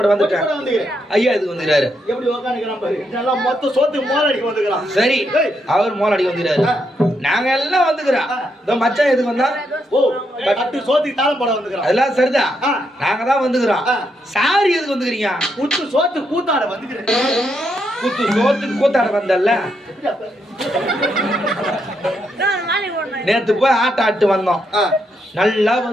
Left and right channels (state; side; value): normal; both; correlation 0.79